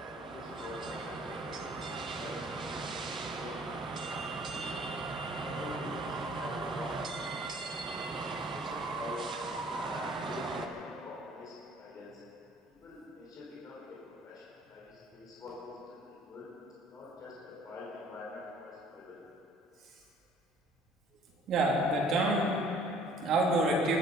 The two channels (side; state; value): both; normal; correlation 0.55